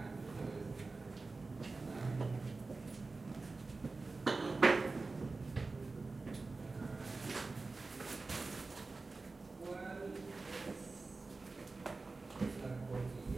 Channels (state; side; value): quieter; left; 3.7 dB